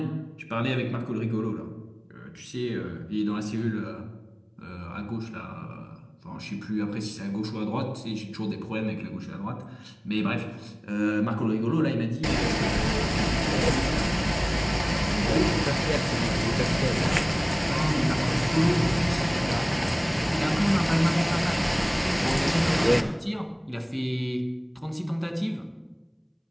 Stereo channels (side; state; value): both; identical; correlation 1.00